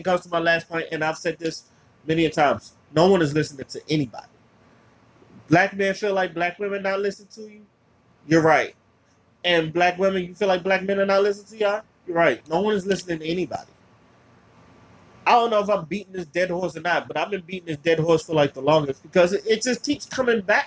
goes to my last point, and I've said this many a times. No one is listening to anybody. Black men feel like black women not listening to you. You're right. And black women, you feel like black men are not listening to y'all. You're right. No one is listening to anybody. I don't know if I'm beating this dead horse or not, but I've been beating this dead horse for like the longest because it just keeps coming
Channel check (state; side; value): identical; both; correlation 1.00